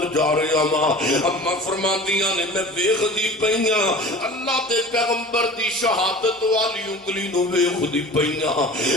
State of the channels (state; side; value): normal; both; correlation 0.40